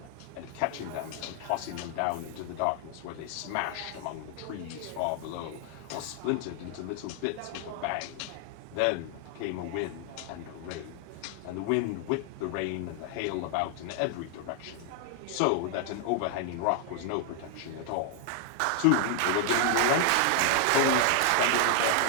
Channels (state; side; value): different; both; correlation 0.00